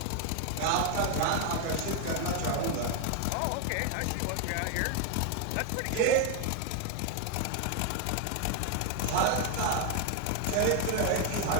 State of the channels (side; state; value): both; different; correlation 0.01